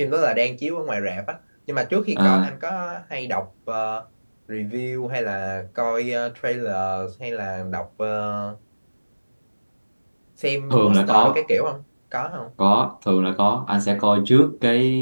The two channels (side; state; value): both; inverted; correlation -1.00